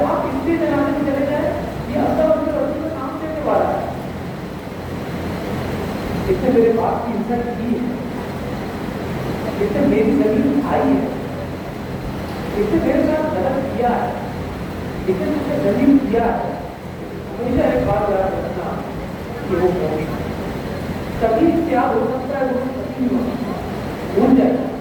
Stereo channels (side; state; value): both; identical; correlation 1.00